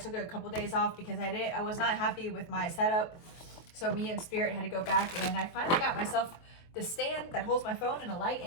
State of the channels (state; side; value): late; right; 23 ms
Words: a couple days off because I was not happy with my setup. So me and Spirit had to go back, and I finally got myself the stand that holds my phone and a light,